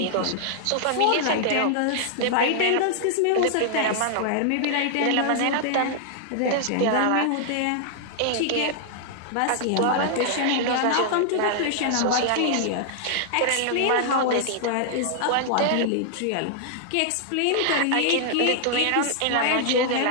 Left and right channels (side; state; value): both; different; correlation -0.01